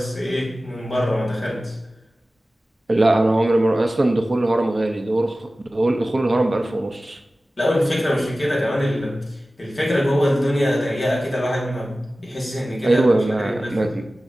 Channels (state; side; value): normal; both; correlation 0.96